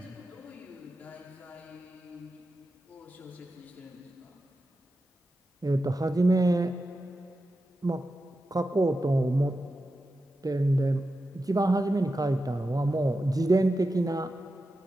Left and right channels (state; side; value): normal; both; correlation 0.91